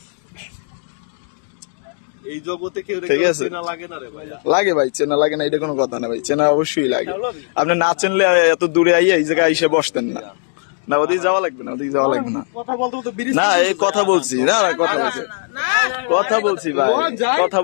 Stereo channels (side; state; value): right; silent; 57 dB below the other